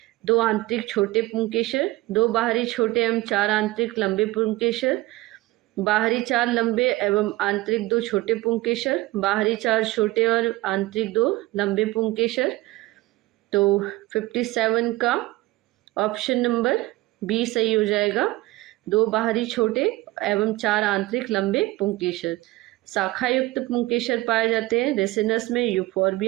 2 आंतरिक छोटे पुंकेसर, 2 बाहरी छोटे एवं 4 आंतरिक लंबे पुंकेसर, बाहरी 4 लंबे एवं आंतरिक 2 छोटे पुंकेसर, बाहरी 4 छोटे और आंतरिक 2 लंबे पुंकेसर। तो 57 का ऑप्शन नंबर बी सही हो जाएगा, 2 बाहरी छोटे एवं 4 आंतरिक लंबे पुंकेसर। शाखा युक्त पुंकेसर पाए जाते हैं रेसिनस में,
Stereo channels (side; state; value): left; quieter; 19.3 dB